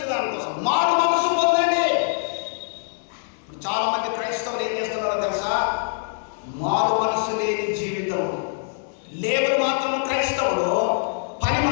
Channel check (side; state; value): right; silent; digital silence